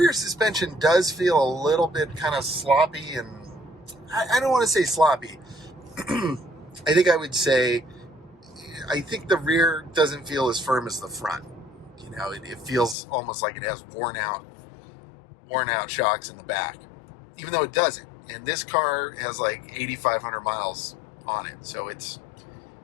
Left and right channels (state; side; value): drops out; right; at 13.0 s